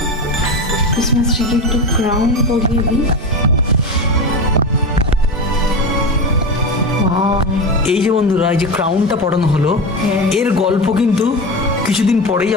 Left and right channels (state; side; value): normal; both; correlation 0.22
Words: ক্রিসমাস ট্রিকে একটু ক্রাউন পরিয়ে দিই। এই যে বন্ধুরা, এই যে ক্রাউনটা পড়ানো হলো, এর গল্প কিন্তু কিছুদিন পরেই